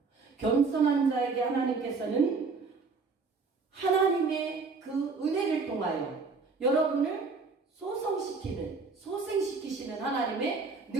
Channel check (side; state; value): left; quieter; 4.4 dB